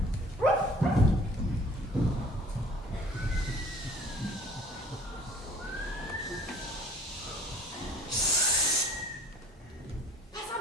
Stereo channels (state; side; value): normal; both; correlation 0.51